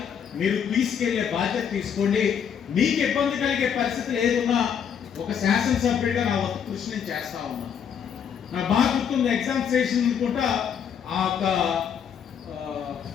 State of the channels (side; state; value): right; quieter; 7.9 dB